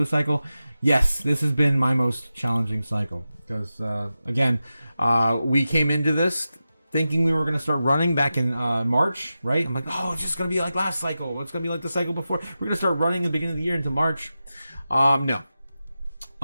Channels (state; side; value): inverted; both; correlation -0.92